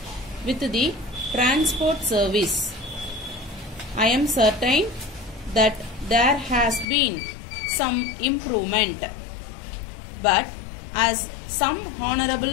with the transport service. I am certain that there has been some improvement, but as some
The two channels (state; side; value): drops out; right; at 6.9 s